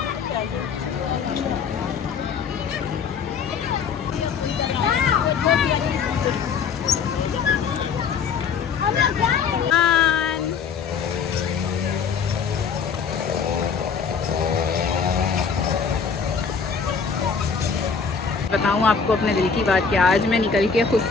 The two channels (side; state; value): right; quieter; 6.1 dB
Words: बताऊँ आपको अपने दिल की बात कि आज मैं निकल के खुद